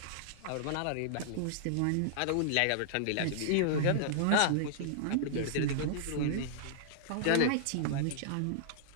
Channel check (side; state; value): both; different; correlation -0.01